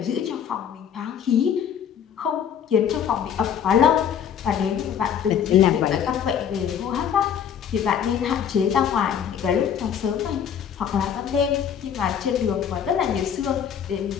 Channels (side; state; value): right; quieter; 8.5 dB